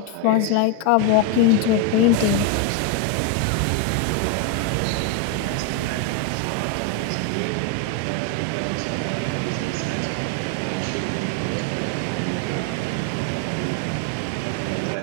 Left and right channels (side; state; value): both; different; correlation 0.01